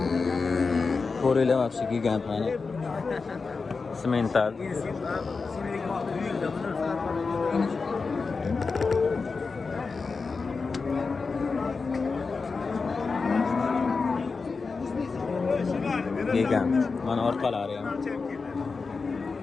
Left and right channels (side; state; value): right; quieter; 4.5 dB